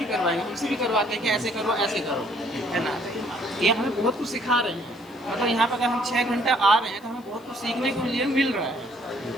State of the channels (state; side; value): noise; left; hiss, 28 dB below the sound